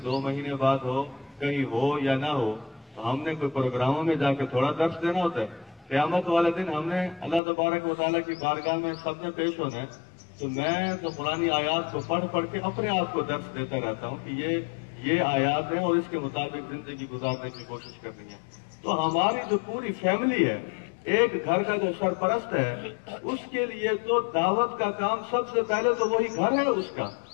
2 مہینے بعد ہو، کہیں ہو یا نہ ہو، تو ہم نے کوئی پروگراموں میں جا کے تھوڑا درس دینا ہوتا ہے. قیامت والے دن ہم نے اللہ تبارک و تعالیٰ کی بارگاہ میں سب نے پیش ہونا ہے. تو میں تو قرآنی آیات کو پڑھ کے اپنے آپ کو درس دیتا رہتا ہوں کہ یہ آیات ہیں اور اس کے مطابق زندگی گزارنے کی کوشش کرنی ہے. تو ہماری جو پوری فیملی ہے، ایک گھر کا جو سرپرست ہے، اس کے لیے تو دعوت کا کام سب سے پہلے تو وہی گھر ہے اس کا.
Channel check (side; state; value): right; drops out; at 7.4 s